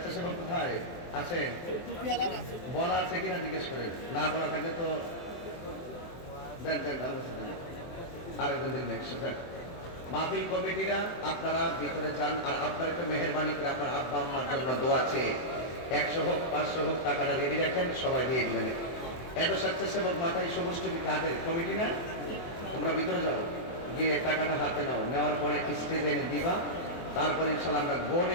কোথায় আছে? বলা আছে কিনা জিজ্ঞেস করে, না বলা থাকলে তো দেন দেন, ভালো কথা দেন। আরেকজন দিন একসাথে মাহফিল কমিটিরা আপনারা ভিতরে যান। আর আপনারা একটু মেহেরবানি করে আপনার আব্বা আম্মার জন্য দোয়া চেয়ে 100 হোক 500 হোক টাকাটা রেডি রাখেন, সবাই দিয়ে দিবেন। এত স্বেচ্ছাসেবক মাথায় সবুজ টুপি কাদের কমিটি না? তোমরা ভিতরে যাও, গিয়ে টাকাটা হাতে নাও, নেওয়ার পরে স্টেজে এনে দিবা। তারপরে ইনশাল্লাহ আমরা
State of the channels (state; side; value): late; right; 24 ms